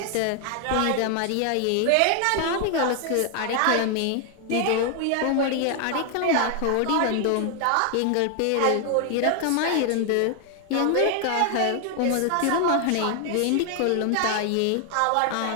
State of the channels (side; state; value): both; different; correlation 0.00